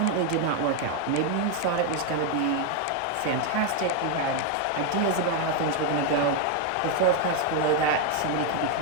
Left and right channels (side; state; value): both; different; correlation 0.01